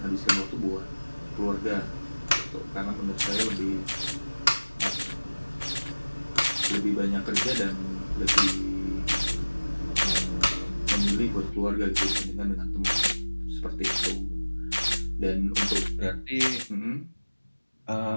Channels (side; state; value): both; inverted; correlation -1.00